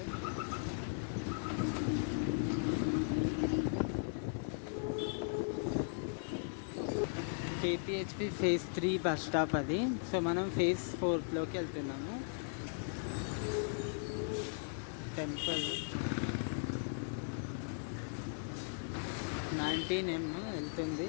KPHP phase 3 bus stop అది. సో మనం ఫేజ్ 4లోకి వెళ్తున్నాము. టెంపుల్ 19M వెళ్తుంది,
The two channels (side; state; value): right; silent; digital silence